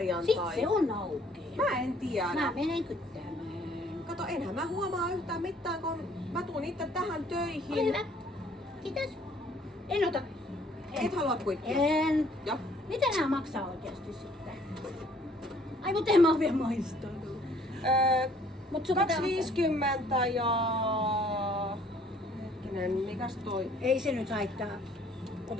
Sitten se on auki. Mä en tiedä. Mä menen kyttämään. Kato, enhän mä huomaa yhtään mitään, kun mä tuun itse tähän töihin. Ole hyvä. Kiitos. En ota. Et halua kuittia? En. Joo. Mitä nää maksaa oikeasti sitten? Ai mut en mä oo vielä maistanut. Mut sun pitää- 2,50 ja... Hetkinen, mikäs toi? Ei se nyt haittaa.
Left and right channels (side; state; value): both; normal; correlation 0.60